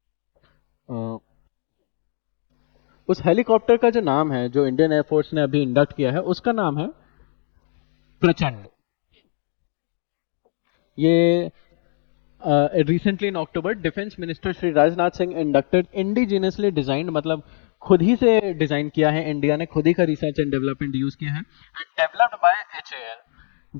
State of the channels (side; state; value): right; silent; digital silence